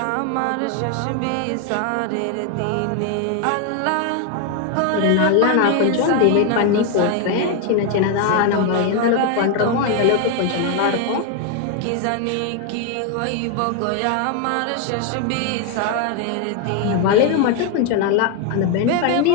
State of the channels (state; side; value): different; both; correlation 0.01